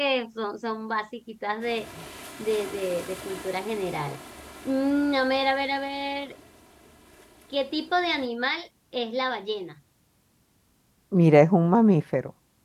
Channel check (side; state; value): both; identical; correlation 1.00